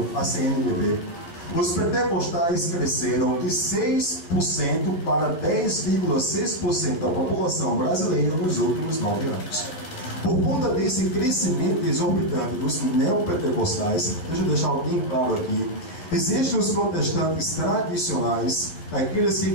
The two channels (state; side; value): late; right; 12 ms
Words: à CNBB, os pentecostais cresceram de 6% para 10,6% da população brasileira nos últimos 9 anos. Por conta desse crescimento exorbitante dos neopentecostais, deixa eu deixar bem claro aqui, existem os protestantes tradicionais, aqueles que